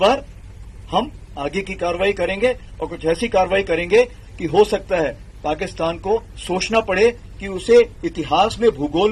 हम आगे की कार्रवाई करेंगे और कुछ ऐसी कार्रवाई करेंगे कि हो सकता है पाकिस्तान को सोचना पड़े कि उसे इतिहास में, भूगोल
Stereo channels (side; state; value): both; identical; correlation 1.00